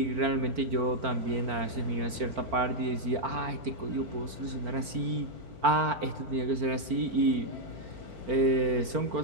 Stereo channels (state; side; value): late; left; 4.4 ms